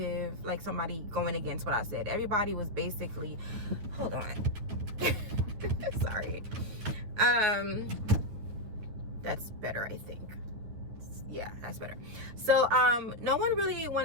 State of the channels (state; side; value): late; left; 9.7 ms